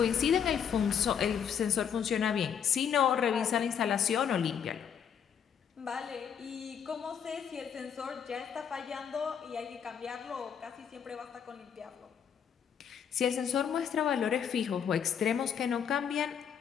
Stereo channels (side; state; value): right; quieter; 7.9 dB